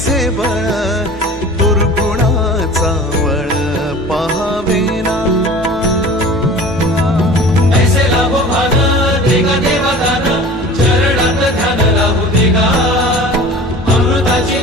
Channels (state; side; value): normal; both; correlation 0.41